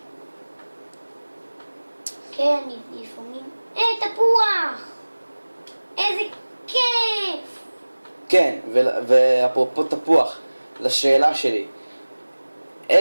כן, לפעמים... תפוח! איזה כיף! כן, ואפרופו תפוח, לשאלה שלי,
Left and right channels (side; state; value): both; inverted; correlation -1.00